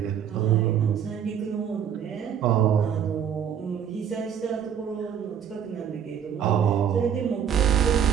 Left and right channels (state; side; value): quieter; left; 8.5 dB